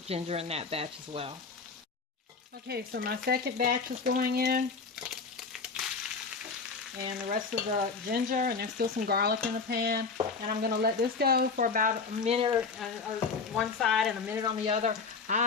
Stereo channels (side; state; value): right; quieter; 4.8 dB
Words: ginger in that batch as well. Okay, so my second batch is going in, and the rest of the ginger, and there's still some garlic in the pan. And I'm going to let this go for about a minute one side and a minute on the other.